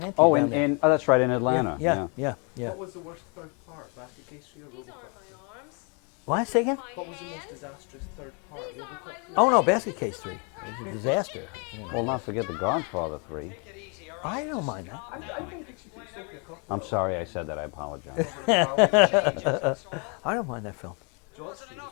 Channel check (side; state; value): right; quieter; 35.6 dB